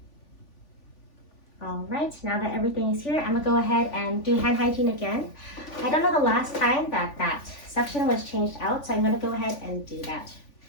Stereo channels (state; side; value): late; right; 3.5 ms